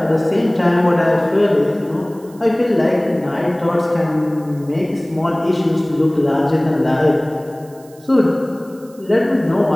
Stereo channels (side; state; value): right; noise; hiss, 27 dB below the sound